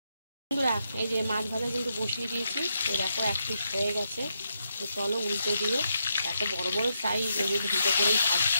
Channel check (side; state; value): both; inverted; correlation -0.81